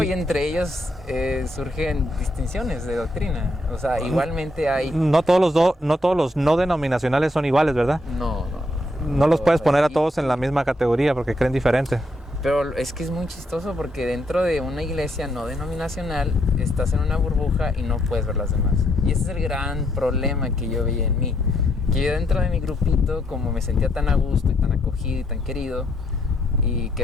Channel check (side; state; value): both; normal; correlation 0.74